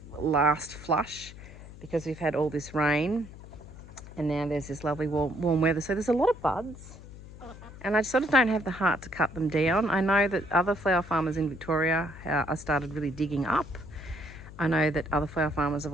last flush because we've had all this rain, and now there's this lovely warm weather, so there's a lot of buds. And I sort of don't have the heart to cut them down. I know that other flower farmers in Victoria are started really digging up. I know that other flower farmers have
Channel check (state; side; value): noise; left; hum, 16 dB below the sound